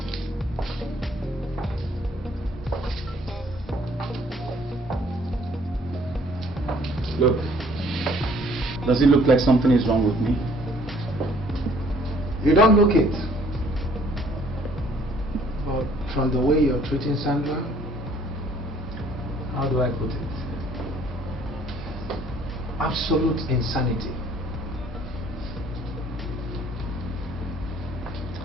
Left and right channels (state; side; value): normal; both; correlation 0.59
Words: Look, does it look like something is wrong with me? You don't look it. But from the way you're treating Sandra, How do I put it? absolute insanity.